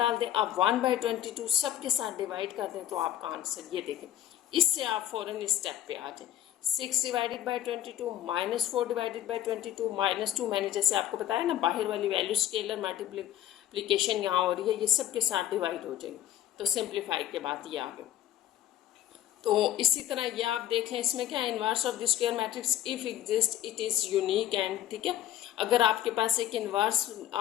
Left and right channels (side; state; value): right; quieter; 12.2 dB